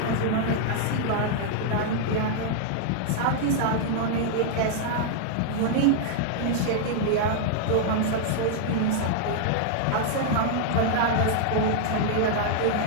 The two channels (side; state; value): both; different; correlation -0.01